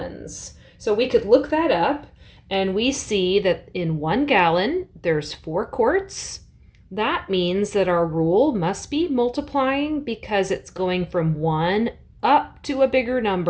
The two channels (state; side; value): identical; both; correlation 1.00